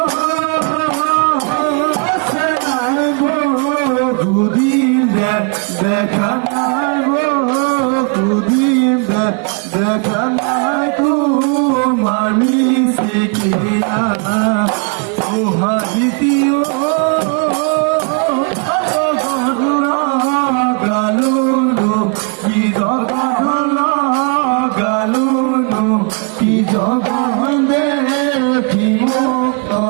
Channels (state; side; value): quieter; left; 35.7 dB